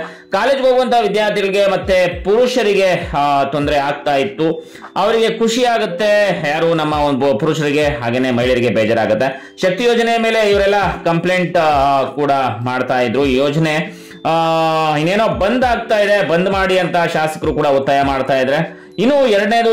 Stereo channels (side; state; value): both; identical; correlation 1.00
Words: ಕಾಲೇಜ್ಗೆ ಹೋಗುವಂತಹ ವಿದ್ಯಾರ್ಥಿಗಳಿಗೆ ಮತ್ತೆ ಪುರುಷರಿಗೆ ತೊಂದರೆ ಆಗ್ತಾ ಇತ್ತು. ಅವರಿಗೆ ಖುಷಿ ಆಗುತ್ತೆ, ಯಾರು ನಮ್ಮ ಒಂದು ಪುರುಷರಿಗೆ ಹಾಗೇನೆ ಮಹಿಳೆಯರಿಗೆ ಬೇಜಾರಾಗುತ್ತೆ. ಶಕ್ತಿ ಯೋಜನೆ ಮೇಲೆ ಇವರೆಲ್ಲ ಕಂಪ್ಲೇಂಟ್ ಕೂಡ ಮಾಡ್ತಾ ಇದ್ರು. ಈ ಯೋಜನೆ ಇನ್ನೇನೋ ಬಂದ್ ಆಗ್ತಾ ಇದೆ, ಬಂದ್ ಮಾಡಿ ಅಂತ ಶಾಸಕರು ಕೂಡ ಒತ್ತಾಯ ಮಾಡ್ತಾ ಇದ್ರೆ. ಇನ್ನು ಎರಡನೇದು